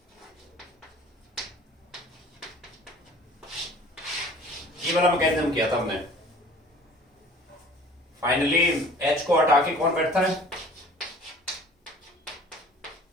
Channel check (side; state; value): both; normal; correlation 0.48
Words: ये वाला मैकेनिज्म किया था हमने। फाइनली H को हटा के कौन बैठता है?